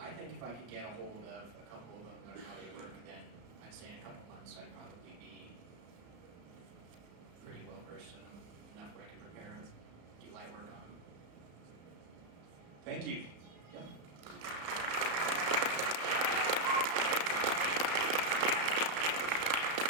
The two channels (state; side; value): late; left; 34 ms